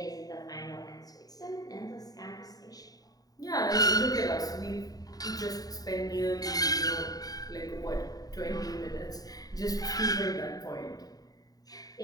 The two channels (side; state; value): right; late; 0.18 ms